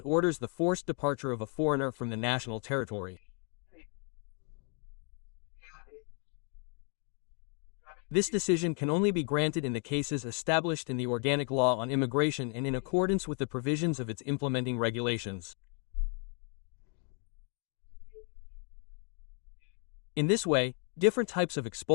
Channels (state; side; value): quieter; right; 39.8 dB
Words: orders the forced departure of a foreigner from the national territory. This decision can only be granted in the cases established in the Organic Law on Immigration and in accordance with the provisions of its implementing regulations. In this way, different types of